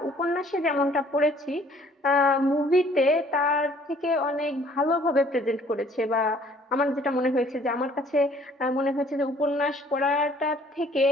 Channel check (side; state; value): both; normal; correlation 0.58